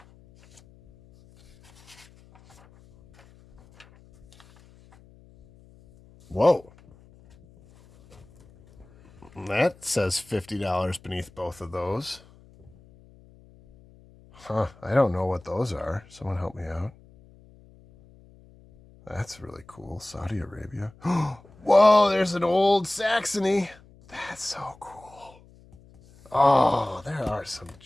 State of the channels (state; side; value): noise; left; hum, 26 dB below the sound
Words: Whoa. That says $50 beneath both of those. Huh, I don't know what those are. Someone help me out. That's really cool. Saudi Arabia. Whoa, there's an old Saxony. That's so cool. Oh, there are some